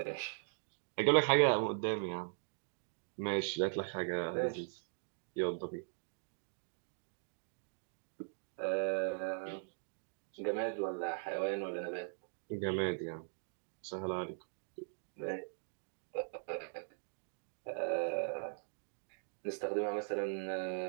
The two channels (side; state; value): left; silent; digital silence